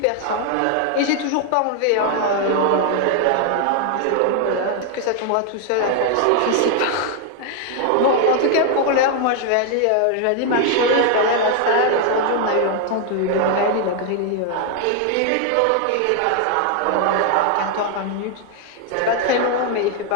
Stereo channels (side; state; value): both; different; correlation 0.00